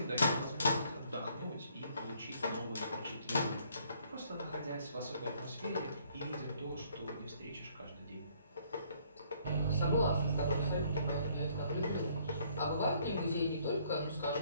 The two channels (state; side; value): inverted; both; correlation -0.64